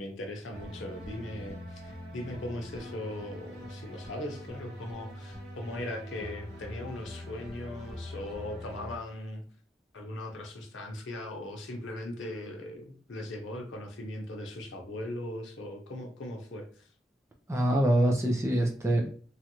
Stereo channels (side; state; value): both; normal; correlation 0.79